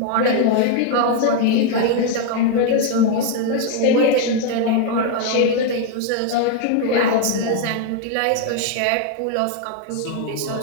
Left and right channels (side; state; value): both; different; correlation 0.00